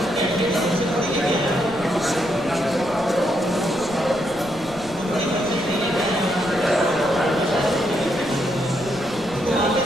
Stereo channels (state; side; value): noise; left; rumble, 18 dB below the sound